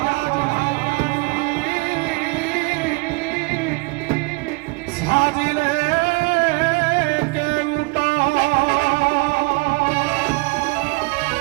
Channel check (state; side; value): quieter; left; 27.3 dB